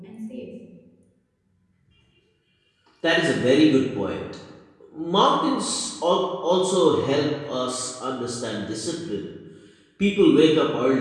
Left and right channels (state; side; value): identical; both; correlation 1.00